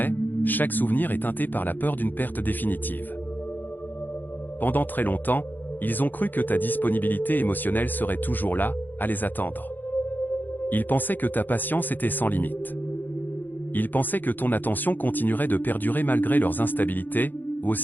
chaque souvenir est teinté par la peur d'une perte définitive. Pendant très longtemps, ils ont cru que ta disponibilité émotionnelle serait toujours là, à les attendre. Ils pensaient que ta patience était sans limite. Ils pensaient que ton attention continuerait de perdurer malgré leurs instabilités,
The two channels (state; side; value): late; right; 0.088 ms